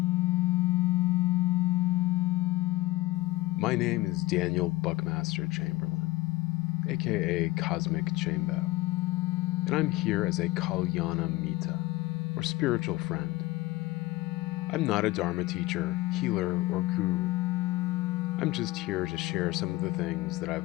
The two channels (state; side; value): quieter; right; 18.9 dB